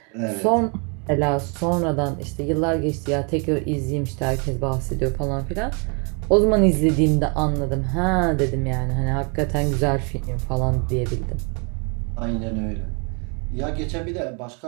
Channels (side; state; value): left; quieter; 35.2 dB